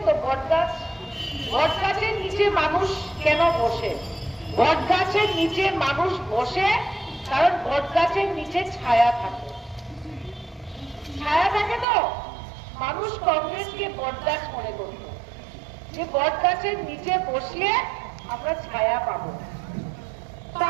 তো? বট গাছ, বট গাছের নিচে মানুষ কেন বসে? বট গাছের নিচে মানুষ বসে কারণ বট গাছের নিচে ছায়া থাকে। ছায়া থাকে তো মানুষ কংগ্রেসকে বট গাছ মনে করত, যে বট গাছের নিচে বসলে আমরা ছায়া পাবো।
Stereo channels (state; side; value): drops out; left; at 11.9 s